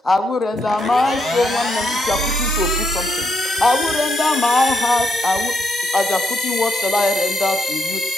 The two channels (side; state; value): both; normal; correlation 0.78